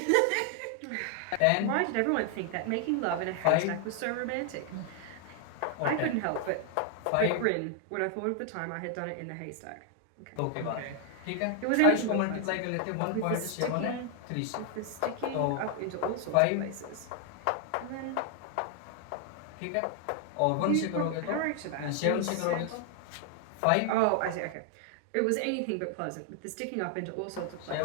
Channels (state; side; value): different; both; correlation 0.00